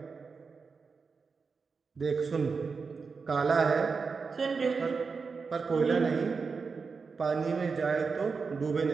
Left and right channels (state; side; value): quieter; left; 5.0 dB